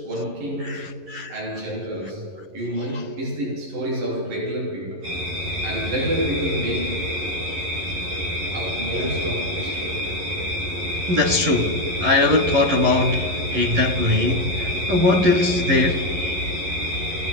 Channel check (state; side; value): late; left; 11 ms